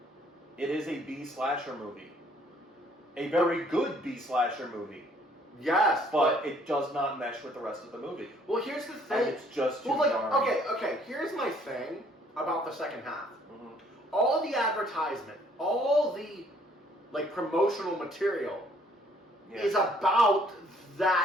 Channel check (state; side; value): normal; both; correlation 0.62